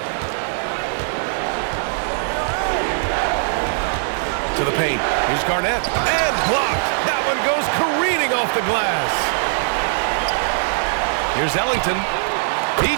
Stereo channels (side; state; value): left; silent; digital silence